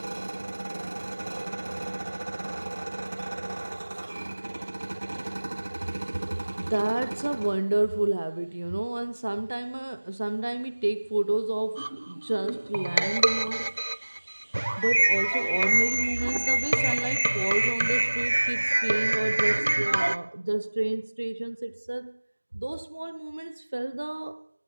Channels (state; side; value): inverted; both; correlation -1.00